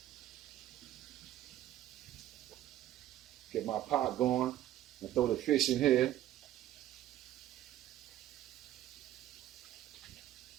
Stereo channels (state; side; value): quieter; left; 13.0 dB